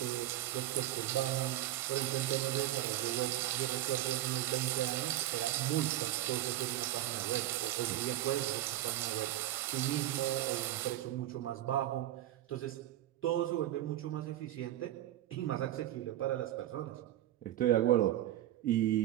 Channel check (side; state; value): left; quieter; 13.9 dB